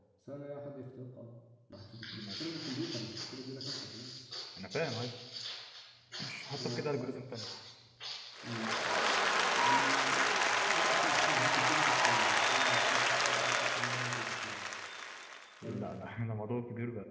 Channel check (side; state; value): both; identical; correlation 1.00